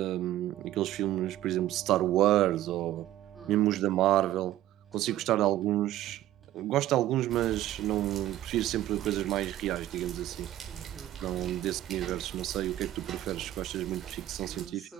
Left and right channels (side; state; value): left; quieter; 13.9 dB